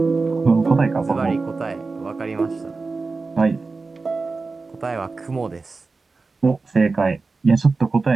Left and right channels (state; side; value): quieter; left; 4.0 dB